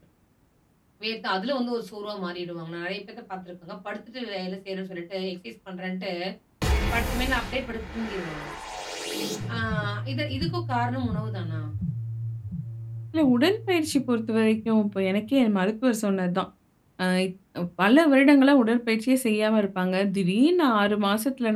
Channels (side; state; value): both; identical; correlation 1.00